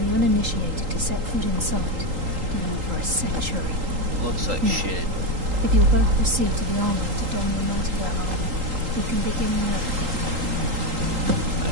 uninitiated to set foot inside in over a century. Looks like shit. If you'll both proceed to the armory to don your Nightingale armor, we can begin work. I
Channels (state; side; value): late; left; 3.8 ms